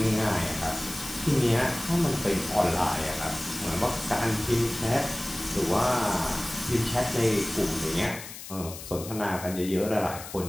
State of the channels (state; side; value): noise; left; hiss, 12 dB below the sound